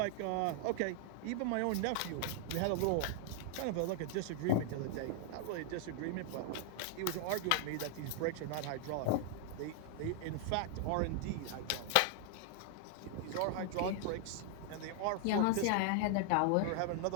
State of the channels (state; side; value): different; both; correlation 0.00